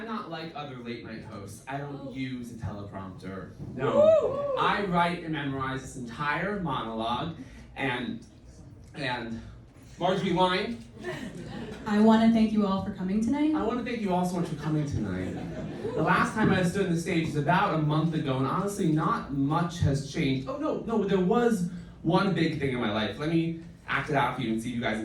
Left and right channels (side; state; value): both; identical; correlation 1.00